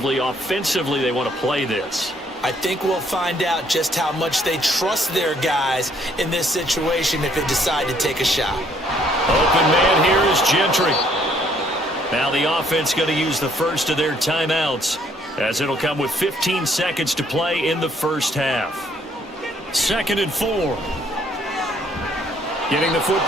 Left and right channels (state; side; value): normal; both; correlation 0.65